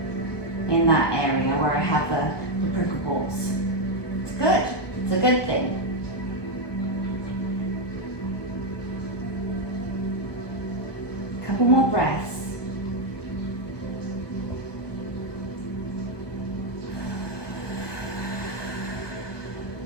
in that area where I have the prickle balls. It's good. It's a good thing. Couple more breaths.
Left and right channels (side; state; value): right; late; 1.2 ms